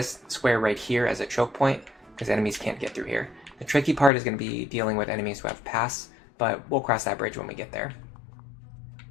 square right here as a choke point, because enemies can't get through here. The tricky part is going to be dealing with enemies who have pass, but we'll cross that bridge when we get there.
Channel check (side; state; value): right; drops out; at 4.1 s